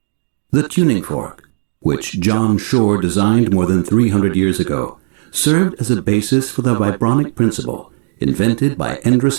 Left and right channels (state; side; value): silent; left; digital silence